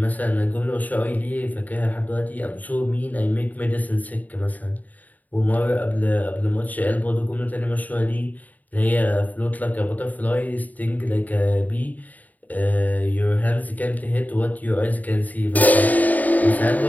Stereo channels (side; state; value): right; late; 0.078 ms